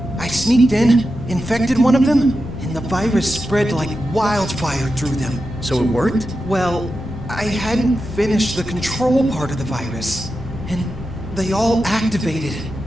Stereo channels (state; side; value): normal; both; correlation 0.90